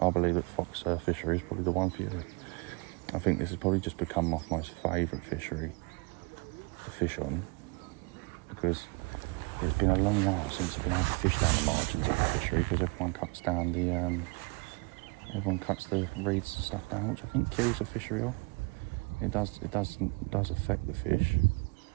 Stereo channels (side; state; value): left; quieter; 29.9 dB